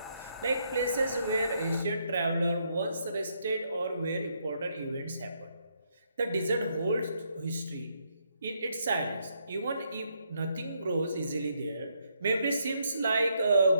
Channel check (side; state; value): both; inverted; correlation -0.75